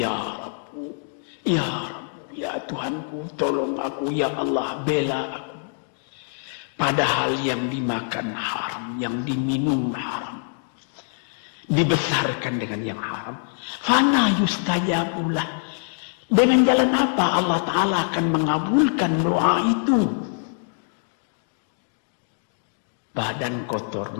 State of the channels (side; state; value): right; silent; digital silence